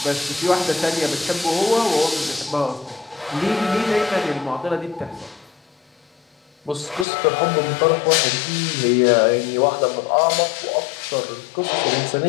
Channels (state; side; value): drops out; right; at 7.1 s